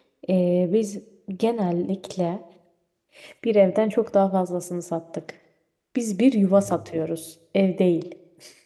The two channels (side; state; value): both; identical; correlation 1.00